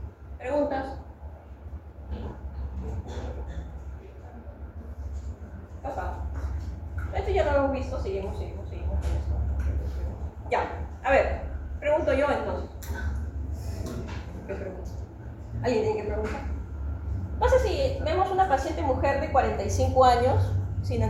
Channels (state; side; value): identical; both; correlation 1.00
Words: ¿Preguntas? Pasa. Esto ya lo hemos visto, seguimos con esto. Ya, a ver, pregunto yo entonces. ¿Qué pregunta? ¿Alguien tiene que preguntar? Pasa si vemos una paciente mujer de 45 años, sin